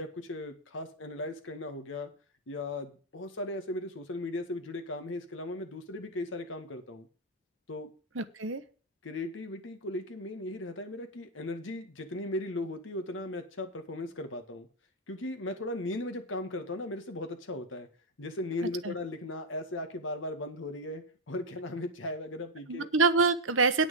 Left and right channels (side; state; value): both; normal; correlation 0.02